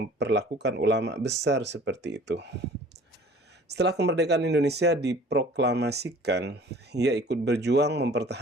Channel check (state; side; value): normal; both; correlation 0.49